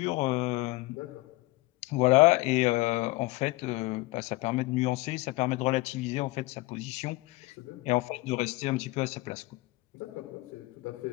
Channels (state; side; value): quieter; right; 21.7 dB